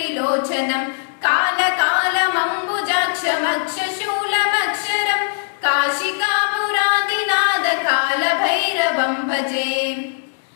कालकालमम्बुजाक्षमक्षशूलमक्षरम् काशिकापुराधिनाथ कालभैरवम् भजे।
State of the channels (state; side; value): silent; right; digital silence